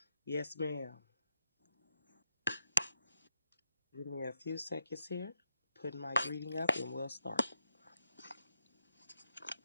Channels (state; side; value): inverted; both; correlation -0.83